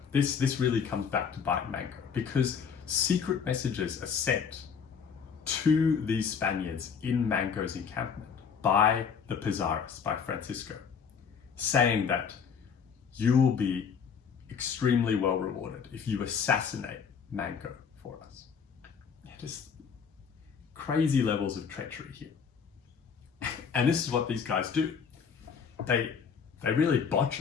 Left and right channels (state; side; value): quieter; right; 6.6 dB